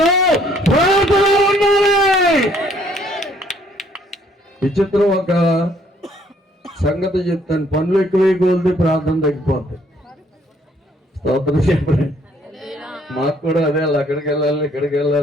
ప్రార్థన ఉండాలి. విచిత్రం ఒక సంగతి చెప్తాను. పనులు ఎక్కువై కోల్ది ప్రార్థన తగ్గిపోతాయి. స్తోత్రం చెప్పండి. మాకు కూడా అదే, అక్కడికి వెళ్ళాలి, ఇక్కడికి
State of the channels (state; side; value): normal; both; correlation 0.64